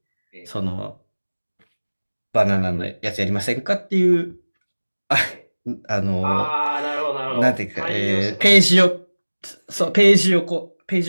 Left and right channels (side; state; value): both; inverted; correlation -1.00